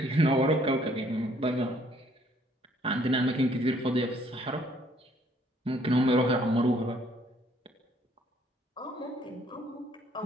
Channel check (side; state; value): both; normal; correlation 0.63